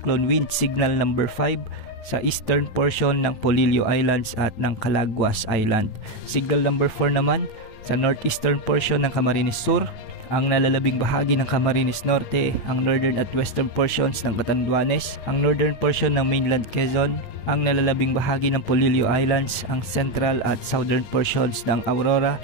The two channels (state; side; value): late; right; 9.1 ms